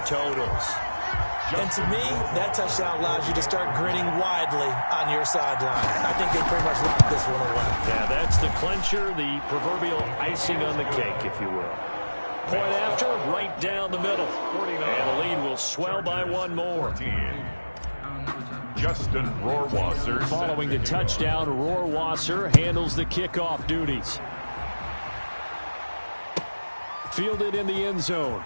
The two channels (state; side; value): inverted; both; correlation -1.00